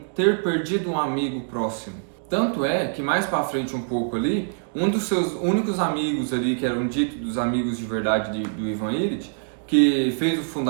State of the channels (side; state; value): left; silent; digital silence